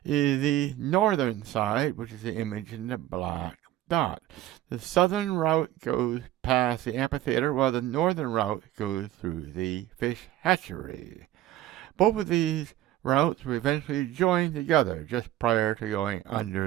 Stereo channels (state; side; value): quieter; left; 14.1 dB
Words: is the northern side, which is the image in the black dot. The southern route goes past the amphitheater, while the northern route goes through the fish hatchery. Both of these routes will eventually join together just prior to going